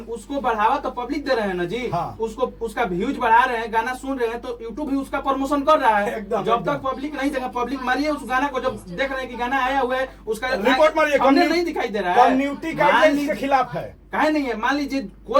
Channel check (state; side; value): identical; both; correlation 1.00